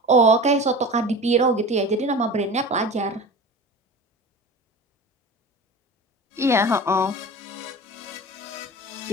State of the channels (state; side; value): normal; both; correlation 0.34